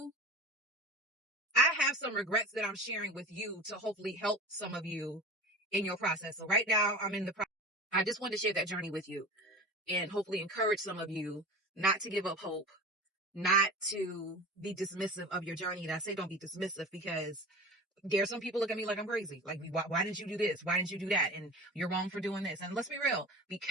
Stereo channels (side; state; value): both; normal; correlation 0.33